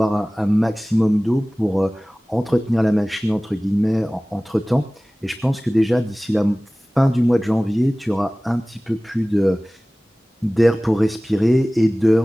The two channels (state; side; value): normal; both; correlation 0.98